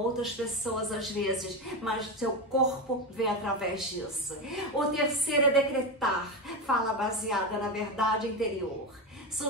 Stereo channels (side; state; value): both; normal; correlation 0.15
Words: pessoas às vezes, mas seu corpo vê através disso. O terceiro é decretar. Fala baseada na verdade interior,